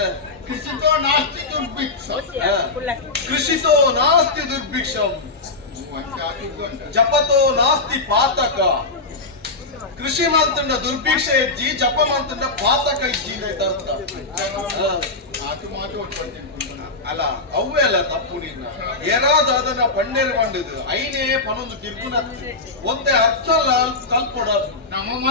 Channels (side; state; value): right; quieter; 3.5 dB